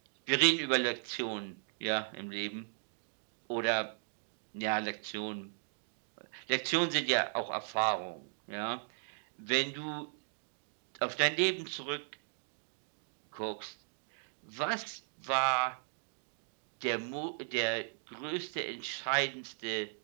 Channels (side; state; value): left; silent; digital silence